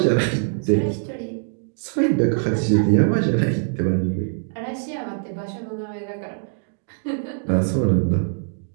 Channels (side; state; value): left; silent; digital silence